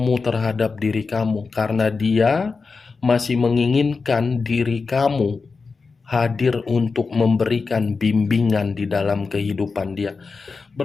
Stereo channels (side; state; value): right; quieter; 4.5 dB